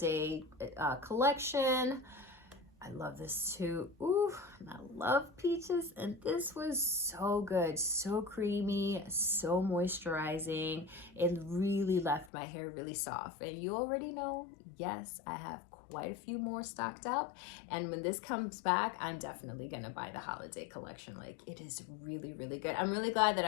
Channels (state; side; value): drops out; right; at 12.3 s